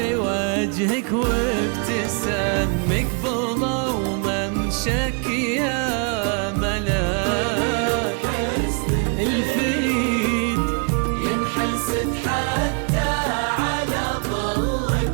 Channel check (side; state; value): left; quieter; 38.0 dB